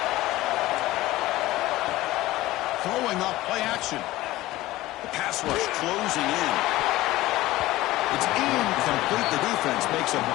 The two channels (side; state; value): right; quieter; 17.2 dB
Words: Throwing up play action. The pass rush closing in. It's incomplete. The defense makes a